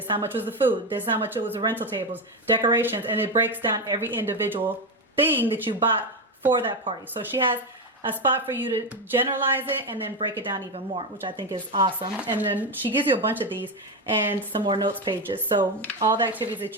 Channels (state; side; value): normal; both; correlation 0.12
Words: is how much was the food. This is how much it was the rental tables, decorations, and it breaks down every individual thing that you bought for that party. So she has a spot for you to generalize it and then break it down even more, which I think is awesome. And then she gives you a bunch of these and some more notes pages. So all the activities that